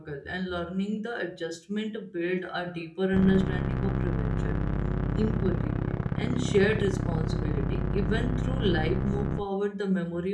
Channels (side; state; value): both; identical; correlation 1.00